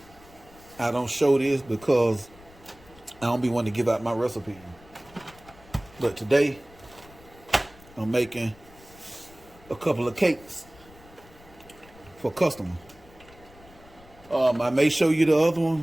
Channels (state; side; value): noise; left; rumble, 24 dB below the sound